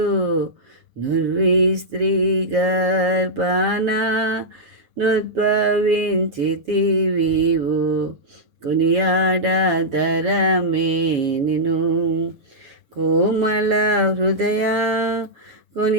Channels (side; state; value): left; late; 7.2 ms